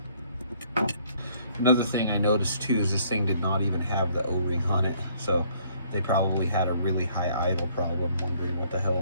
another thing I noticed too is this thing did not even have the O-ring on it, so they probably had a really high idle problem, wondering what the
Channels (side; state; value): both; inverted; correlation -0.63